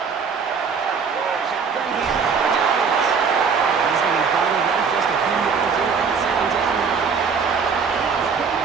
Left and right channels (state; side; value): quieter; left; 5.8 dB